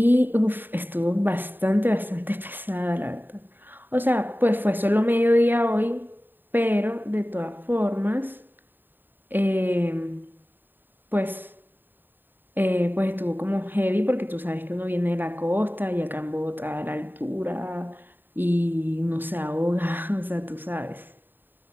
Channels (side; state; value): left; late; 0.093 ms